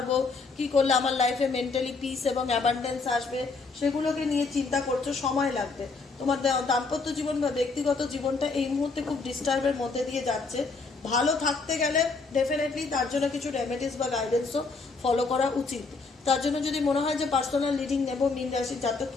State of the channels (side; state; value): right; quieter; 4.2 dB